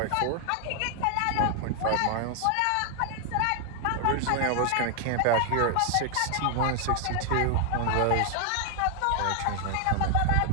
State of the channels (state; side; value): different; both; correlation 0.00